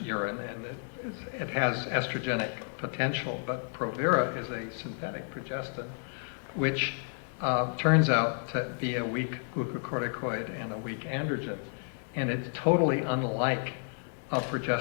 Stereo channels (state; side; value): silent; right; 57 dB below the other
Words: and it has estrogenic potential, but Provera is a synthetic progestin, which turns out to be a weak glucocorticoid and a weak androgen, and it's totally unlike